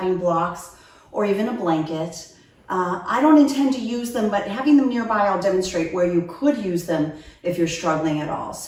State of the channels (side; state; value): both; identical; correlation 1.00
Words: blocks or even a blanket. I don't intend to use them, but having them nearby, I'll demonstrate where you could use them if you're struggling at all.